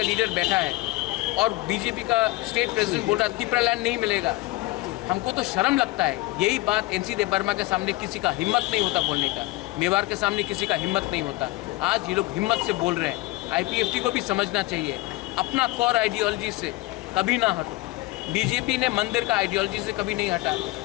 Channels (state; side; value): quieter; right; 20.1 dB